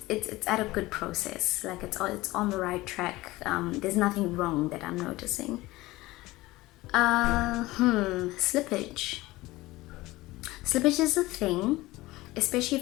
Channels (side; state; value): right; quieter; 19.2 dB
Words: it's at a good process. Like it's on the right track. There's nothing wrong that I'm noticing. Slippage. Slippage is a thing, especially